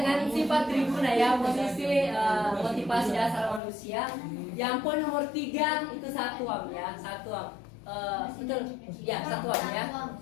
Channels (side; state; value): right; drops out; at 3.6 s